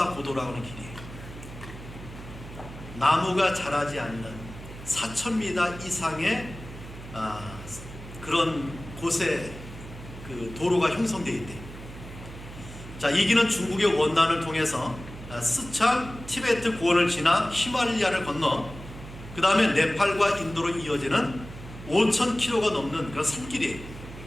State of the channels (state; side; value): noise; right; hum, 14 dB below the sound